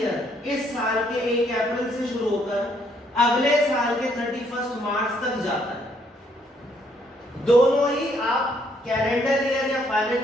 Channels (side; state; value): both; normal; correlation 0.69